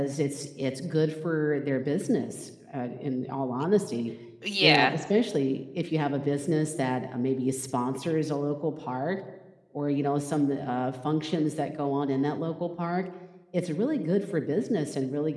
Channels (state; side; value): identical; both; correlation 1.00